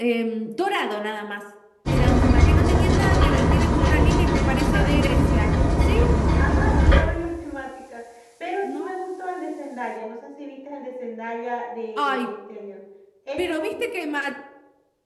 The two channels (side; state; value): both; identical; correlation 1.00